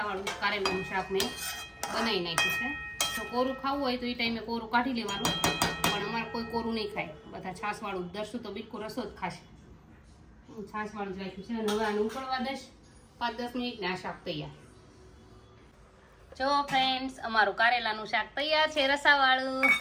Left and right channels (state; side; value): identical; both; correlation 1.00